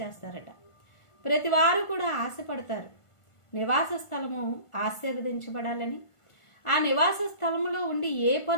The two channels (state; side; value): late; right; 1.5 ms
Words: ప్రతి వారు కూడా ఆశపడతారు నివాస స్థలము ఆశీర్వదించబడాలని. ఆ నివాస స్థలములో ఉండి ఏ